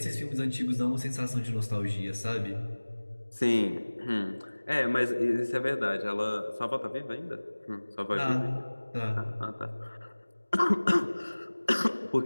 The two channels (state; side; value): inverted; both; correlation -1.00